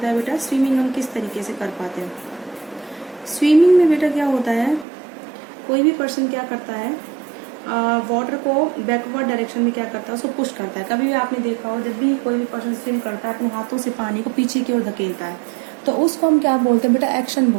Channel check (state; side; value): drops out; left; at 4.9 s